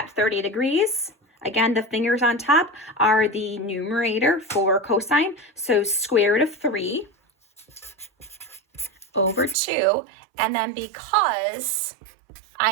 30 degrees, again, the fingers on top are the numerator for cosine. So square root of 3 over 2. And then because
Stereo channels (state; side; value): drops out; left; at 9.6 s